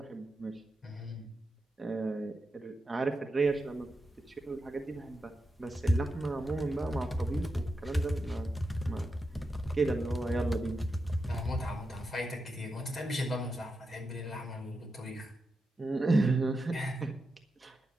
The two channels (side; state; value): both; normal; correlation 0.88